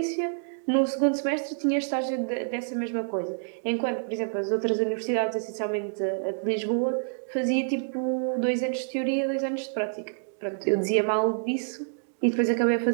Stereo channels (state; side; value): silent; left; digital silence